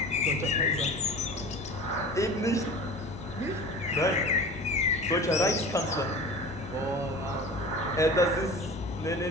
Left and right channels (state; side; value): normal; both; correlation 0.37